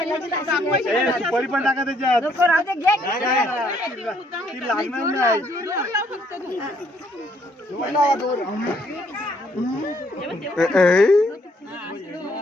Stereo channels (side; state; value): both; normal; correlation 0.68